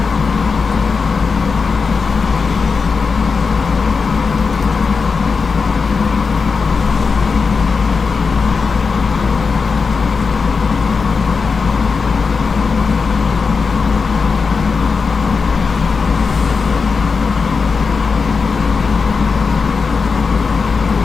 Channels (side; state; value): right; quieter; 4.9 dB